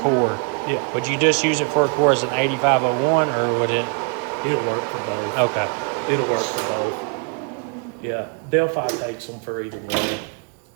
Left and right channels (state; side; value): quieter; left; 37.0 dB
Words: Yeah. would you just use it for a core as an 8501, or would it? It'll work for both. Okay. It'll work for both. Yeah. Delphi takes them for either one.